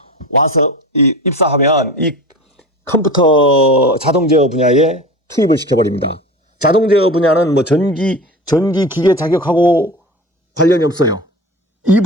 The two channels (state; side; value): normal; both; correlation 0.32